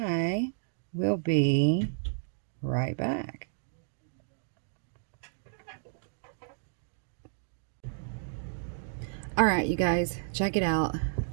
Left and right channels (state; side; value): silent; left; digital silence